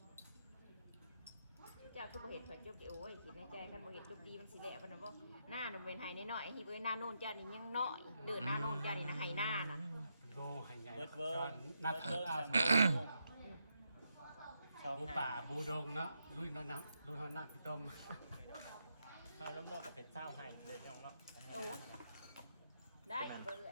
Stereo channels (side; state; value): both; inverted; correlation -0.82